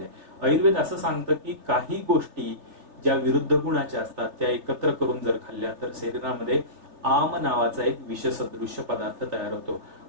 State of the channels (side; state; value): left; late; 3.3 ms